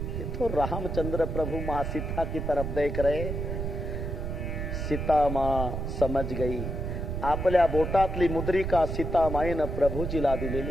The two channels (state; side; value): noise; right; rumble, 3 dB below the sound